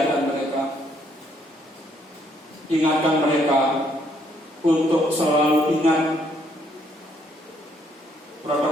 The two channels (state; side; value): normal; both; correlation 0.69